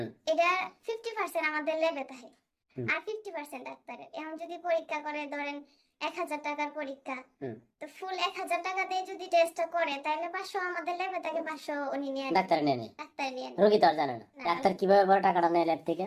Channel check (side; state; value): both; identical; correlation 1.00